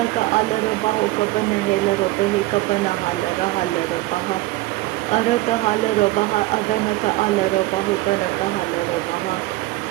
आल रो बहु कबन हेल रो बेहे कबन हाल रहाल रो बहा अरत हाल रो बहा अदनक आल रो बहु तनक हाल रो बहा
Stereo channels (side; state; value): left; quieter; 18.4 dB